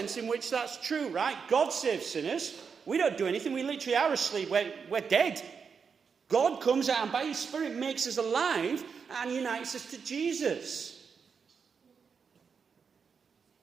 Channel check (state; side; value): quieter; left; 6.0 dB